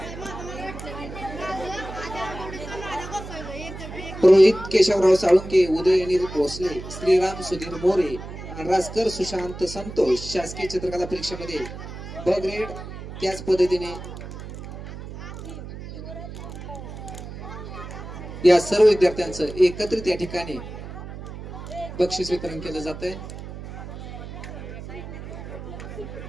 रोहित केशवराव साळुंके, उदय अनिल भोसले, श्रीराम सुधीर मोरे, राजकर सुशांत संतोष शासकीय चित्रकला परीक्षेमध्ये ब ग्रेड. त्याच पद्धतीने या सर्व विद्यार्थ्यांचं एकत्रित या ठिकाणी बक्षीस वितरण केलं जात आहे.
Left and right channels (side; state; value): right; noise; hum, 11 dB below the sound